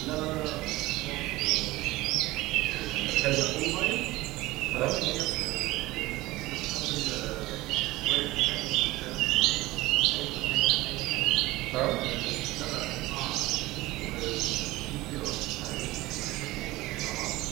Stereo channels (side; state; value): left; quieter; 19.0 dB